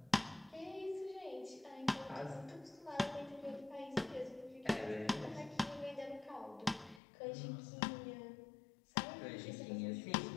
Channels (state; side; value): drops out; right; at 7.0 s